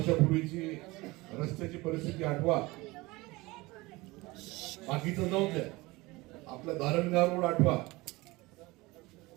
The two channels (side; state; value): left; quieter; 21.9 dB